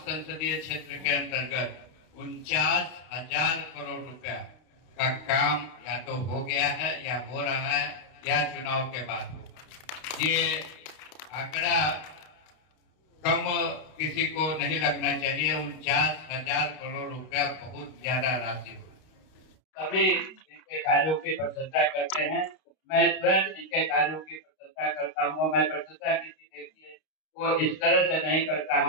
क्षेत्र के अंतर्गत 49,000 करोड़ रुपया का काम या तो हो गया है या हो रहा है या चुनाव के बाद होगा। ये आंकड़ा कम किसी को नहीं लगना चाहिए। 49,000 करोड़ रुपया बहुत ज्यादा राशि हो। सभी इनके कार्यों की प्रशंसा करते हैं। मैं स्वयं इनके कार्यों की प्रशंसा करता हूँ। मैं प्रशंसा किसी व्यक्ति को इस तरह से नहीं करता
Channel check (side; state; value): right; late; 32 ms